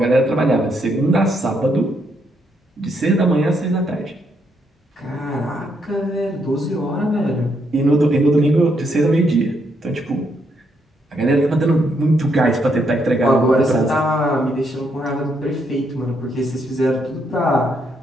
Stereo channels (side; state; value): both; normal; correlation 0.76